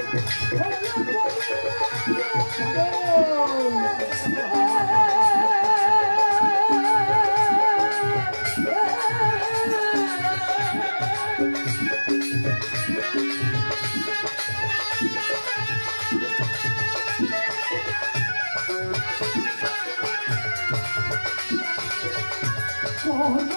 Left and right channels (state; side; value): inverted; both; correlation -1.00